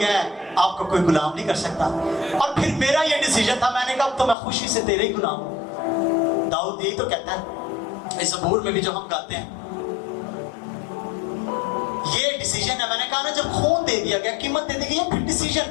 ہے، آپ کو کوئی غلام نہیں کر سکتا. اور پھر میرا یہ ڈیسیجن تھا، میں نے کہا اب تو میں خوشی سے تیرے ہی غلام ہوں. داؤد یہی تو کہتا ہے اس زبور میں بھی جو ہم گاتے ہیں، یہ ڈیسیجن ہے. میں نے کہا نا جب خون دے دیا گیا، قیمت دے دی گئی، پھر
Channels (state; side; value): drops out; right; at 4.4 s